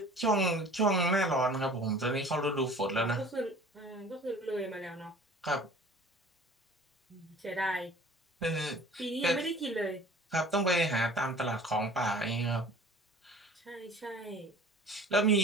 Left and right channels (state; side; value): normal; both; correlation 0.46